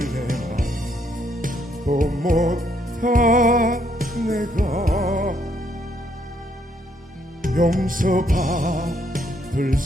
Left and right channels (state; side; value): normal; both; correlation 0.71